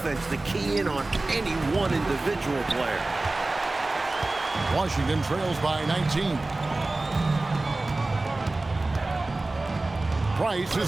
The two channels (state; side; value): quieter; left; 3.0 dB